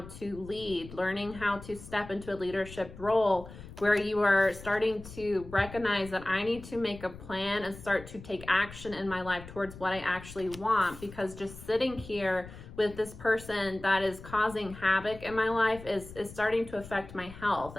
to lead, learning how to step into a leadership role where you are starting to recognize that I need to make a plan and start to take action in my life towards what I actually want, because just sitting here with this person that is causing havoc in my life is starting to affect my health.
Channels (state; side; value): noise; left; rumble, 15 dB below the sound